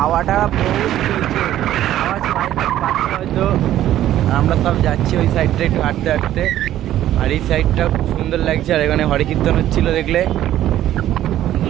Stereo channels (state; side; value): quieter; left; 12.7 dB